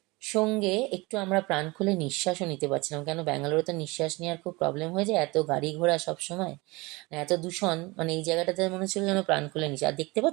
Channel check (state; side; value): quieter; left; 23.9 dB